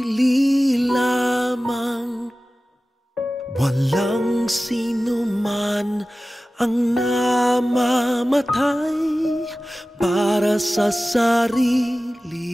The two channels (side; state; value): both; normal; correlation 0.96